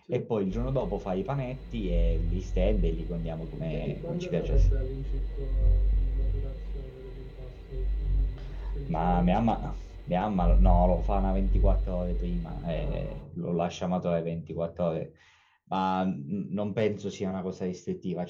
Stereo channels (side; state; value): both; identical; correlation 1.00